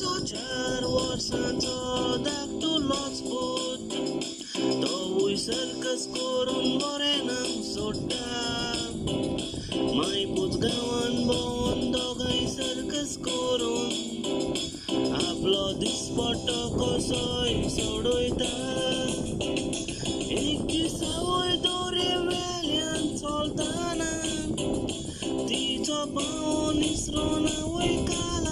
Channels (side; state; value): both; identical; correlation 1.00